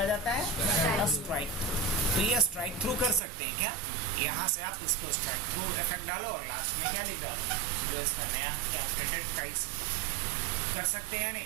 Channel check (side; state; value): left; drops out; at 3.2 s